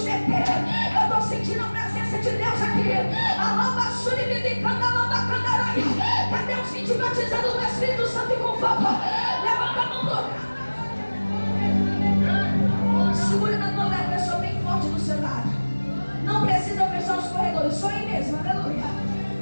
deter. Eu estou sentindo a presença de Deus aqui. Cadê os que te batizando no Espírito Santo e com fogo? Levanta a mão do lugar. Segure na mão da pessoa bem forte do seu lado. Não precisa fechar os corredores, só aí mesmo, aleluia.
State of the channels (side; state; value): both; inverted; correlation -1.00